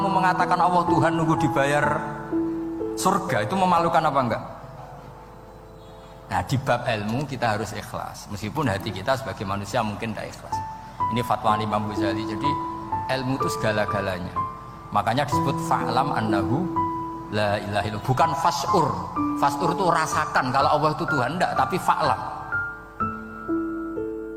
mengatakan Allah Tuhan nunggu dibayar surga? Itu memalukan apa enggak? Nah di bab ilmu kita harus ikhlas, meskipun hati kita sebagai manusia mungkin tidak ikhlas. Ini fatwa Imam Ghazali. Jadi ilmu itu segala-galanya. Makanya disebut fa'lam annahu la ilaha illallah, bukan fas'ur. Fas'ur itu rasakan kalau Allah itu Tuhan, enggak, tapi fa'lam.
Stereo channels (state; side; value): identical; both; correlation 1.00